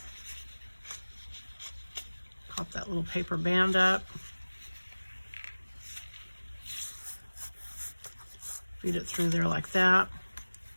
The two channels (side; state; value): both; inverted; correlation -1.00